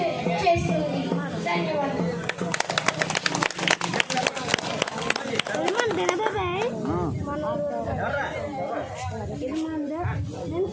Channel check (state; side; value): identical; both; correlation 1.00